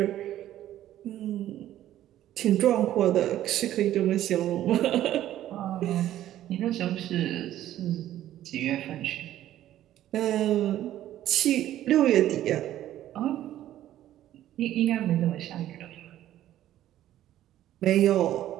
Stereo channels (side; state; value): left; quieter; 12.8 dB